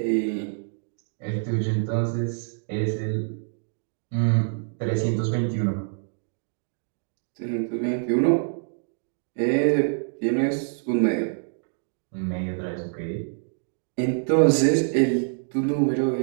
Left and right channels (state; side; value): silent; left; digital silence